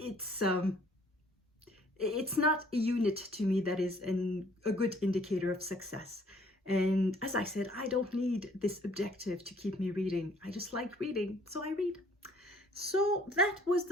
not a unit to me that is a good indicator of success. And as I said, I don't need this objective to keep me reading. I just like reading, so I read. So that was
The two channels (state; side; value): normal; both; correlation 0.59